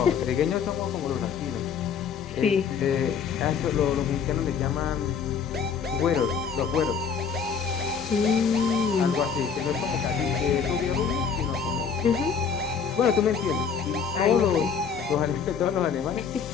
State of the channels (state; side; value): quieter; right; 6.6 dB